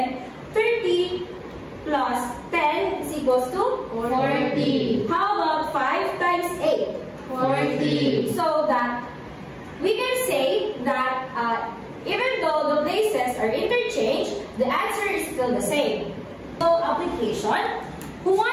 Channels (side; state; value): both; identical; correlation 1.00